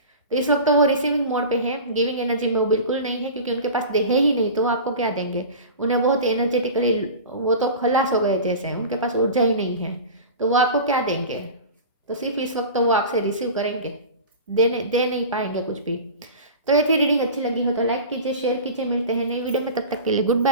तो इस वक्त तो वो रिसीविंग मोड पे है, गिविंग एनर्जी में वो बिल्कुल नहीं है, क्योंकि उनके पास दे है ही नहीं तो वो आपको क्या देंगे। उन्हें बहुत एनर्जेटिकली वो तो खलास हो गए जैसे, उनके पास ऊर्जा ही नहीं है, तो वो आपको क्या देंगे। तो सिर्फ इस वक्त तो वो आपसे रिसीव करेंगे, दे नहीं पाएंगे कुछ भी। तो ये थी रीडिंग, अच्छी लगी हो तो लाइक कीजिए, शेयर कीजिए, मिलते हैं नई वीडियो में, तब तक के लिए गुड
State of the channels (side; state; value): both; inverted; correlation -0.33